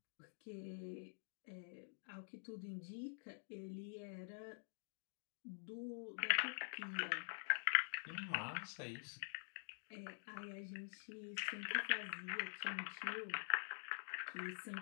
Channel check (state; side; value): silent; right; digital silence